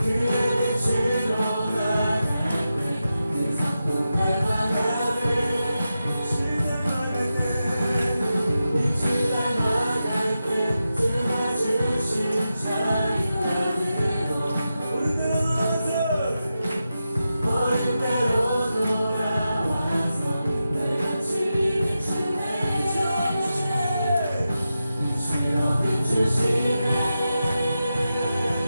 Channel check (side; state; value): both; inverted; correlation -0.91